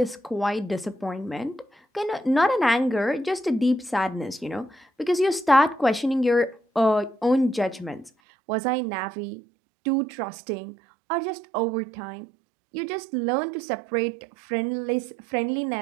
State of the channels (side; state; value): left; drops out; at 8.1 s